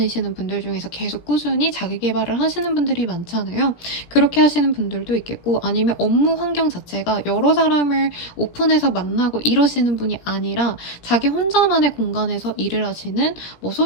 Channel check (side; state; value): right; late; 17 ms